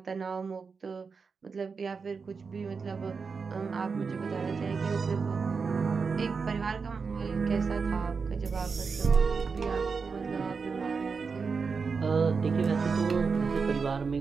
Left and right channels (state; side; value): quieter; left; 5.1 dB